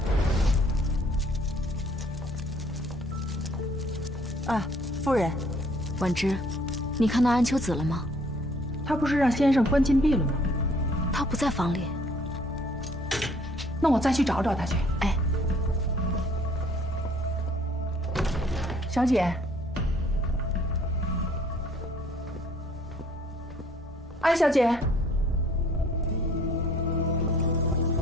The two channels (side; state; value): both; normal; correlation 0.59